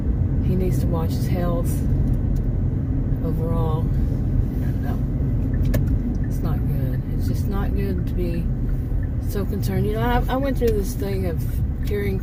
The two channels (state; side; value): identical; both; correlation 1.00